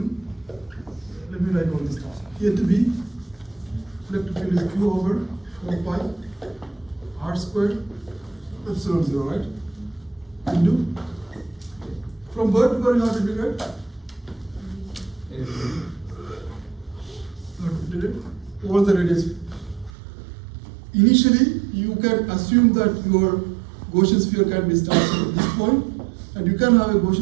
Let me write all these stuff. A to B. Electric field is Q over 4 pi r squared epsilon 0, right? Into from where to where you have to integrate? You have to integrate all the radius. Initially, you can assume that your Gaussian sphere can be started at this point, and you can have a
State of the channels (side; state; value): left; drops out; at 19.9 s